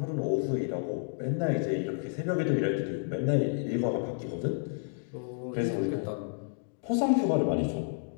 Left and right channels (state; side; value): silent; right; digital silence